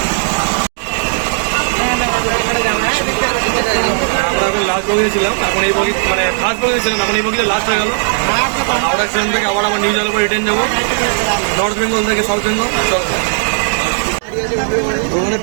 লাস্ট বগিতে ছিলাম, এখন এই বগি মানে ফার্স্ট বগিতে ছিলাম, এখন এই বগিতে লাস্ট হয়ে গেল। হাওড়া স্টেশন থেকে আবার আমার নিউ জলপাইগুড়ি রিটার্ন যাবো, নর্থ বেঙ্গল থেকে সাউথ বেঙ্গল। ওখানে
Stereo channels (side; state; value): left; silent; 67 dB below the other